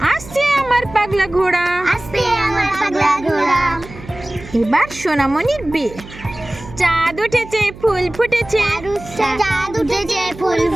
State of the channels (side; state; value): right; noise; hum, 17 dB below the sound